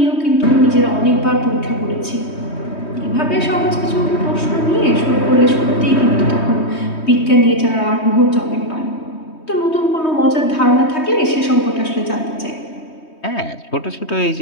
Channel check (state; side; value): late; right; 3.2 ms